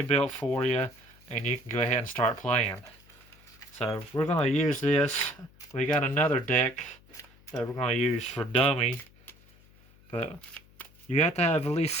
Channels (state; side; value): noise; left; hum, 27 dB below the sound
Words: built for you, and you can go ahead and start playing. So we're going to use this. We got another deck that we're going to use for dummy, but you have to have at least